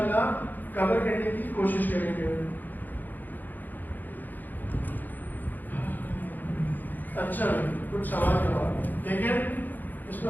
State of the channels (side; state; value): right; late; 0.086 ms